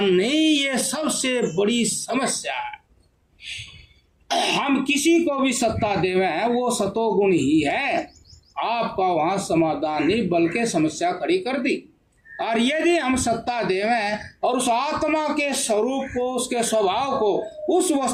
नहीं, ये सबसे बड़ी समस्या है। हम किसी को भी सत्ता देवे हैं वो सतोगुण ही है, आपका वहां समाधान नहीं बल्कि समस्या खड़ी कर दी। और यदि हम सत्ता देवें और उस आत्मा के स्वरूप को, उसके स्वभाव को उस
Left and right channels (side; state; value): both; identical; correlation 1.00